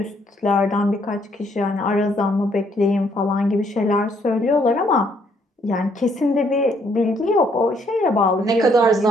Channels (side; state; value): both; normal; correlation 0.68